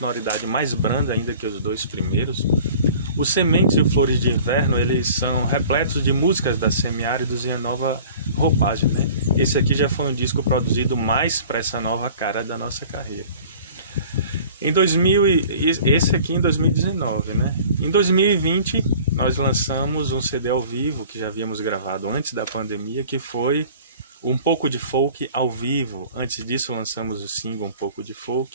mais branda ainda que os dois primeiros. Os Sementes e o Flores de Inverno, eles são repletos de músicas da Semiáridos em nova roupagem, né? Esse aqui já foi um disco produzido mais para essa nova cara da nossa carreira. Esse aqui em 2019, né? Em 2020 nós lançamos um CD ao vivo que já havíamos gravado antes da pandemia, que foi Um Pouco de Folk ao vivo. Antes disso lançamos o single Um Pouco de Folk.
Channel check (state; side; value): inverted; both; correlation -0.46